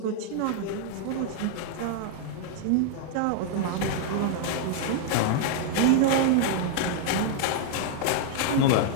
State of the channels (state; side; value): different; both; correlation 0.00